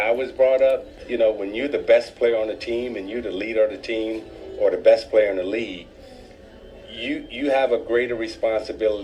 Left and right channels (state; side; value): identical; both; correlation 1.00